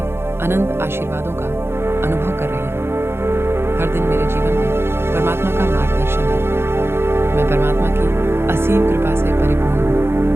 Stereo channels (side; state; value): left; late; 0.12 ms